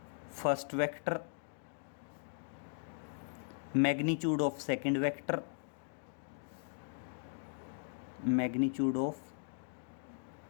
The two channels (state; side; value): silent; right; digital silence